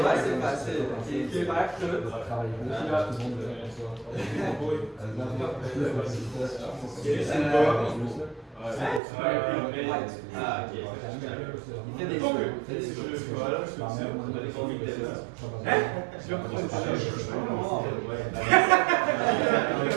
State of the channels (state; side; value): drops out; left; at 9.0 s